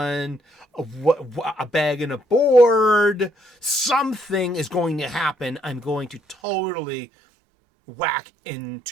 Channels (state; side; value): drops out; left; at 6.4 s